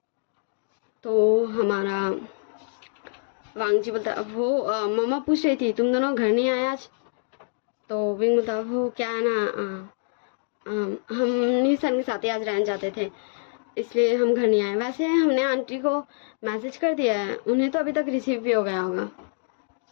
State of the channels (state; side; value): silent; right; digital silence